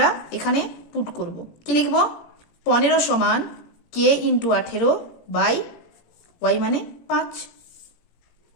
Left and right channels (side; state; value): right; late; 17 ms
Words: এখানে পুট করব। কি লিখব, 15 সমান কে ইন্টু 18 বাই ওয়াই মানে 5।